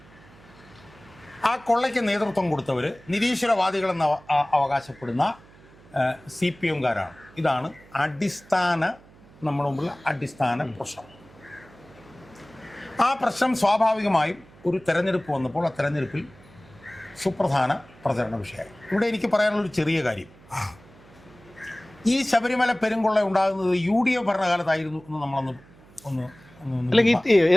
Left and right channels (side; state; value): right; noise; hum, 25 dB below the sound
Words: ആ കൊള്ളയ്ക്ക് നേതൃത്വം കൊടുത്തവർ നിരീശ്വരവാദികളെന്ന് അവകാശപ്പെടുന്ന CPM-കാരാണ്. ഇതാണ് നമ്മുടെ മുമ്പിലുള്ള അടിസ്ഥാന പ്രശ്നം. ആ പ്രശ്നം സ്വാഭാവികമായും ഒരു തെരഞ്ഞെടുപ്പ് വന്നപ്പോൾ ആ തെരഞ്ഞെടുപ്പിൽ സുപ്രധാന പ്രചരണ വിഷയമായി. ഇവിടെ എനിക്ക് പറയാനുള്ളൊരു ചെറിയ കാര്യം, ഈ ശബരിമല പെരുങ്കൊള്ള ഉണ്ടാകുന്നത് UDF ഭരണകാലത്തായിരുന്നു എന്ന് നമ്മളൊന്ന്